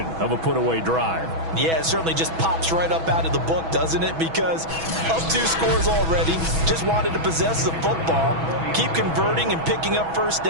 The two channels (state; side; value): late; left; 6.1 ms